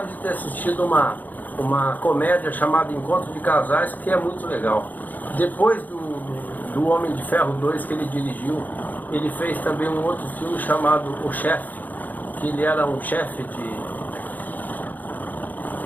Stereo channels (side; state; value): right; late; 0.083 ms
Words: de ter assistido uma comédia chamada Encontro de Casais, que é muito legal. Depois do Homem de Ferro 2 que ele dirigiu, ele fez também um outro filme chamado O Chefe, que ele era um chefe de